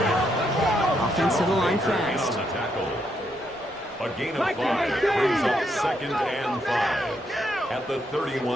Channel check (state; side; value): normal; both; correlation 0.77